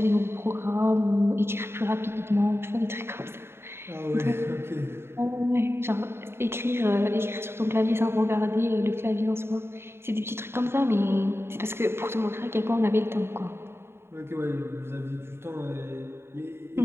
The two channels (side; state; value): left; late; 0.12 ms